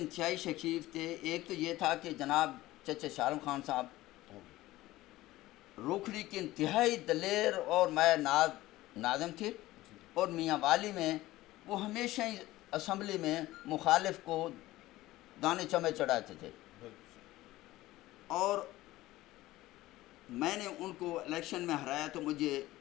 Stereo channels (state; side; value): quieter; right; 17.1 dB